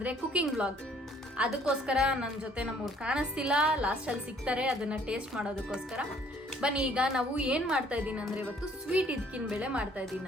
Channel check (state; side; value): normal; both; correlation 0.59